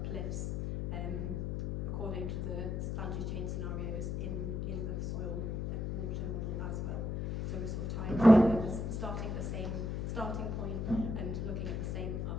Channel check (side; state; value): left; noise; hum, 1 dB below the sound